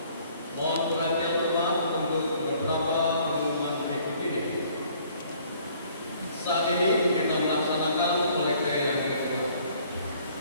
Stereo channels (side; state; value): both; inverted; correlation -0.59